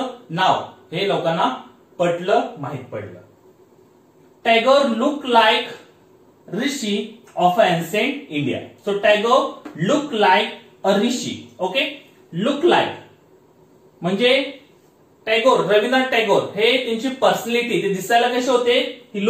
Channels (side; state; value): both; identical; correlation 1.00